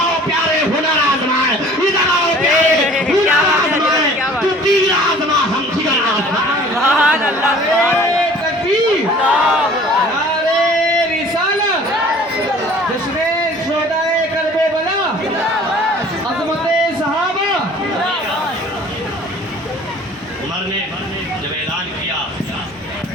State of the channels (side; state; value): both; normal; correlation 0.49